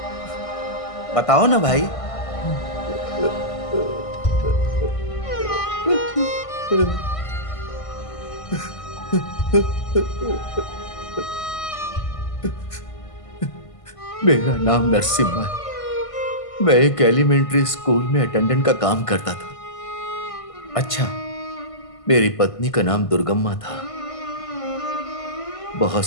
बताओ ना भाई। मेरा नाम नरसिम्हा है। मैं एक एलिमेंट्री स्कूल में अटेंडेंट का काम करता था। अच्छा, मेरी पत्नी का नाम दुर्गम्मा था। बहुत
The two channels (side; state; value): right; late; 1.5 ms